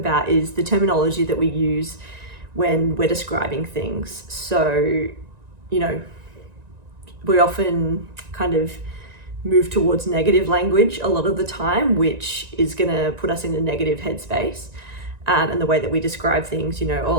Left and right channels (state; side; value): late; left; 1.9 ms